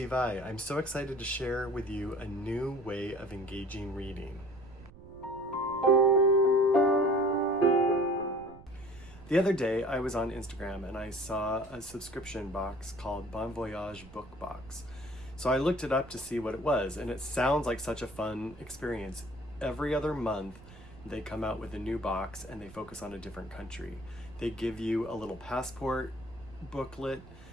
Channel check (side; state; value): right; noise; rumble, 20 dB below the sound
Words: I. I'm so excited to share with you a new way of engaging reading. The other day I was on Instagram and I saw a subscription box called Bon Voyage Book Box. So I looked it up to see what it was, and it sounds like such a fun experience. Every other month they come out with a new box and they focus on a different country. They give you a little passport booklet,